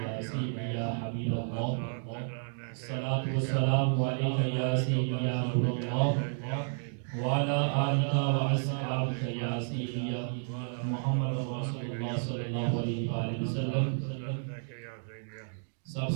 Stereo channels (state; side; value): silent; left; digital silence